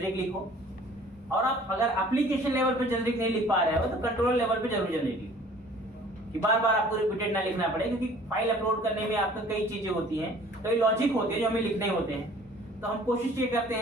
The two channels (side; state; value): both; normal; correlation 0.51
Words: लिखो, और आप अगर एप्लीकेशन लेवल पे जेनरिक नहीं लिख पा रहे हो तो कंट्रोलर लेवल पे जरूर जेनरिक लिखो, कि बार बार आपको रिपीटेड ना लिखना पड़े, क्योंकि फाइल अपलोड करने में आपको कई चीजें होती हैं, कई लॉजिक होते हैं जो हमें लिखने होते हैं। तो हम कोशिश ये करते